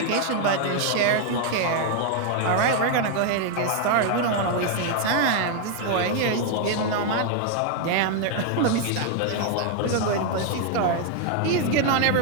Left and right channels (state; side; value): different; both; correlation 0.00